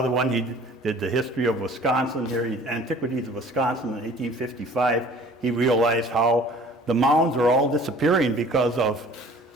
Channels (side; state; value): both; normal; correlation 0.50